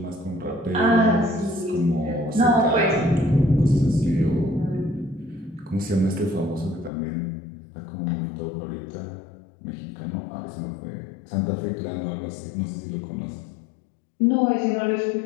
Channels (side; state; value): right; drops out; at 6.9 s